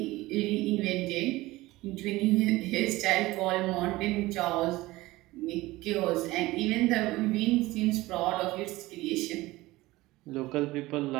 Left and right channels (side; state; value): left; quieter; 19.1 dB